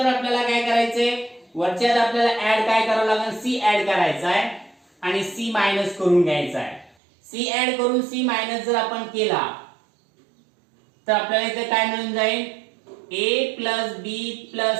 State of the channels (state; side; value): drops out; left; at 7.0 s